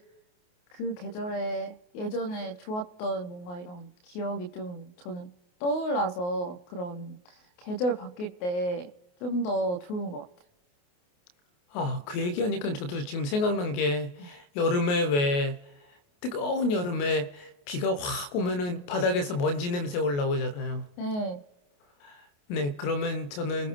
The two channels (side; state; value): right; late; 28 ms